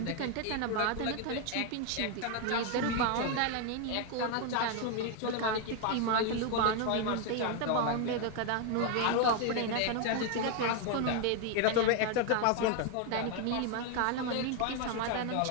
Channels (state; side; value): different; both; correlation 0.01